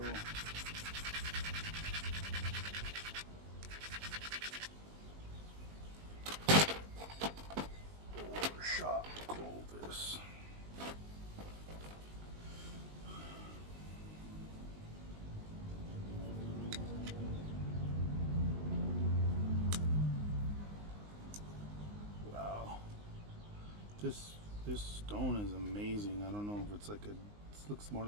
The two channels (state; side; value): late; left; 19 ms